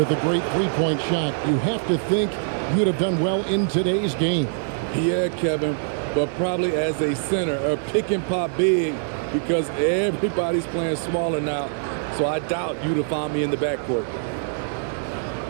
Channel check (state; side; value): silent; left; digital silence